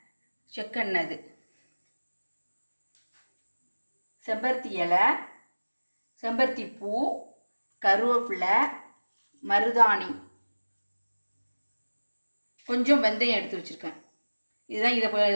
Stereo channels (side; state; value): both; inverted; correlation -1.00